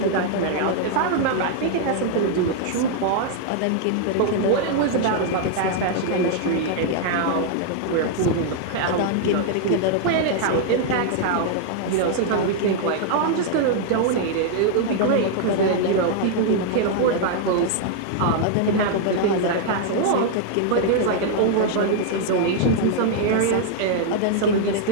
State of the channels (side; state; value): both; different; correlation 0.00